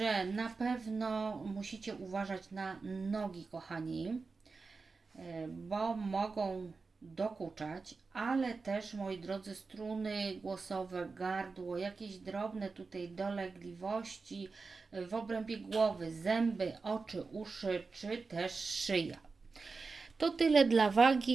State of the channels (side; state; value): left; quieter; 4.3 dB